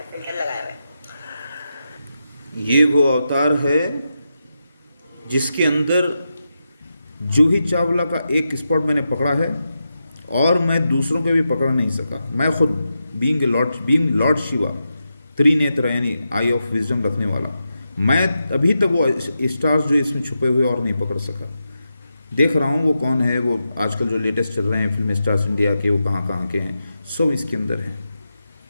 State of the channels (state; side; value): inverted; both; correlation -0.88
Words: फिल्टर लगाया हुआ है। ये वो अवतार है जिसके अंदर जूही चावला का एक स्पॉट मैंने पकड़ा है, और मैं दूसरों को भी पकड़ नहीं सका। मैं खुद बीइंग लॉर्ड शिवा, त्रिनेत्र यानी आई ऑफ विजडम रखने वाला, मैं अभी तक वो स्टार्स जो इसमें छुपे हुए और नहीं पकड़ सका। देख रहा हूँ वो कौन है, वो आजकल जो लेटेस्ट चल रहे हैं फिल्म स्टार्स इंडिया के, वो कहाँ कहाँ के हैं, सब इसके अंदर हैं।